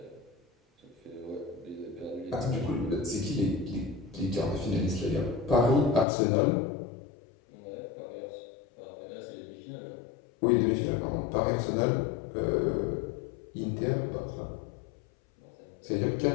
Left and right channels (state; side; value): drops out; right; at 6.1 s